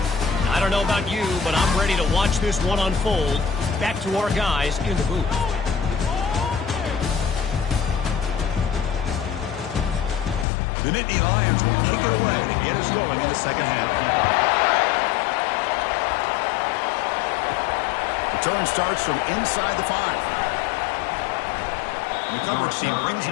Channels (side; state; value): right; drops out; at 10.5 s